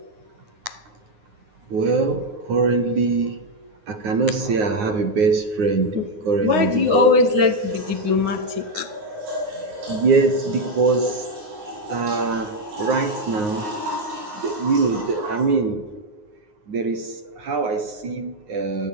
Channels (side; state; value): left; late; 9.6 ms